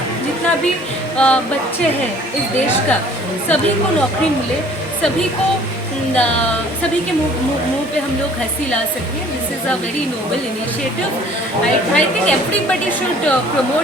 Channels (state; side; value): normal; both; correlation 0.53